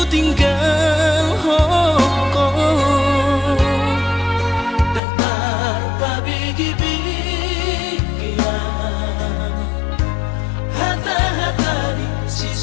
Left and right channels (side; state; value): right; drops out; at 5.0 s